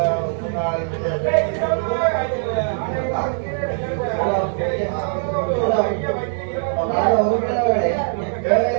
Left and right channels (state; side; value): silent; left; 65 dB below the other